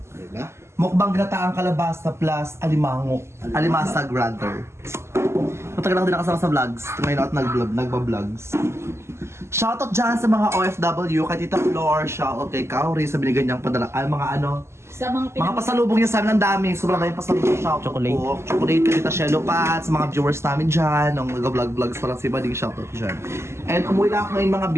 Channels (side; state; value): left; late; 0.13 ms